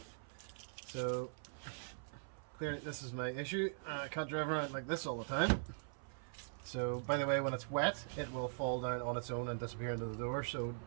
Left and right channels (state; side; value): silent; left; 50 dB below the other